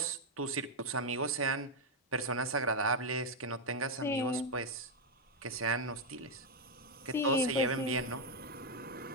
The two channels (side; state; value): both; normal; correlation 0.01